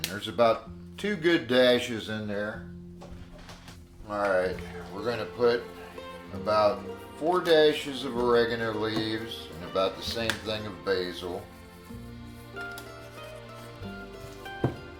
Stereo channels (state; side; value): identical; both; correlation 1.00